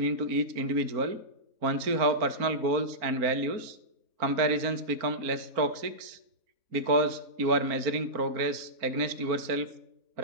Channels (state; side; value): late; left; 4.4 ms